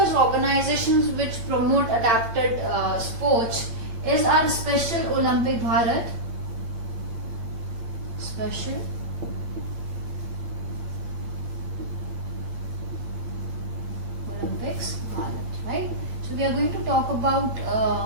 organizations which promote adapted sports is our Special Olympic Bharat. Special Olympics Bharat, right? So we are going to talk about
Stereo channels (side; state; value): left; late; 8.7 ms